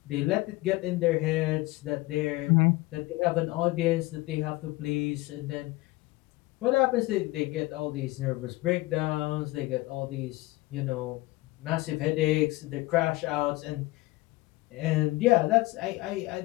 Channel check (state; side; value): quieter; right; 20.4 dB